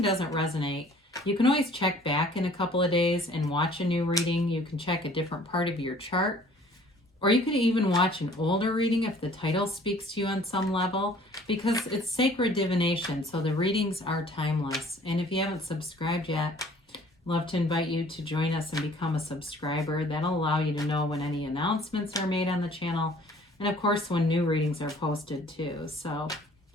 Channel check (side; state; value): both; normal; correlation 0.54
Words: doesn't resonate, you can always check back in a couple of days and watch a new reading. You can check a different part of your chart. Or you could even watch an older reading if the title speaks to you on some level, because it's sacred divination, so the readings are timeless. And if you haven't subscribed yet, love to invite you to join us and become a subscriber. That'll allow you to know when any announcements are made on the channel, and of course when new readings are posted too. So